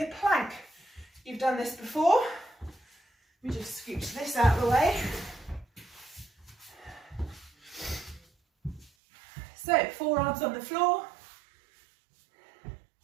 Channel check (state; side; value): drops out; left; at 8.9 s